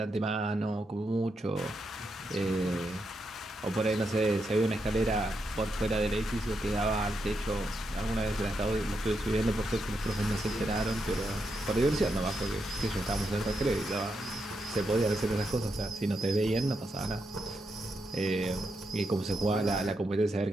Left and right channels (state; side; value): normal; both; correlation 0.83